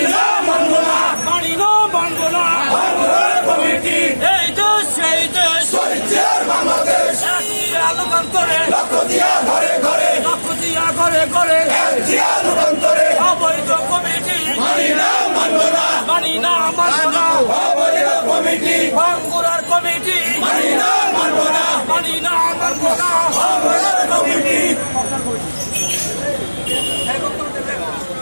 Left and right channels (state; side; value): inverted; both; correlation -1.00